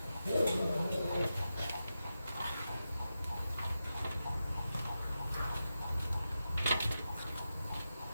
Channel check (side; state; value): both; inverted; correlation -0.90